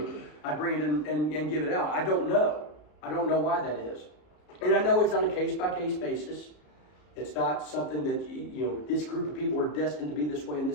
I'd bring it in and give it out. I don't know. I don't know why that is. And I know it's on a case-by-case basis. It's not something that, this group of people are destined to be this way and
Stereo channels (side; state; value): right; late; 33 ms